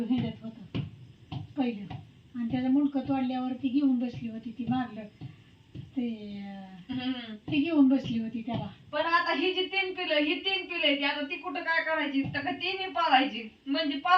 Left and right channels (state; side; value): identical; both; correlation 1.00